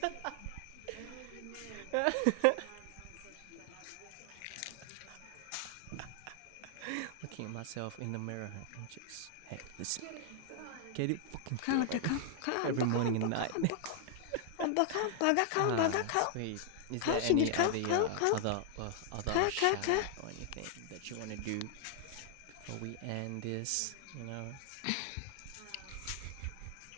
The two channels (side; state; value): both; different; correlation 0.00